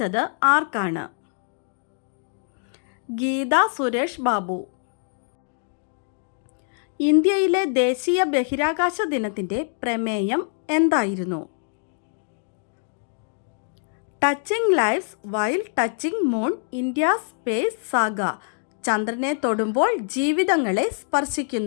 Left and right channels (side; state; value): right; silent; digital silence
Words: ആർക്കാണ്? ഗീത സുരേഷ് ബാബു. ഇന്ത്യയിലെ ദേശീയ ബഹിരാകാശ ദിനത്തിൻ്റെ പ്രമേയം എന്തായിരുന്നു? Touching lives while touching moon, India space saga. ചന്ദ്രനെ തൊടുമ്പോൾ ജീവിതങ്ങളെ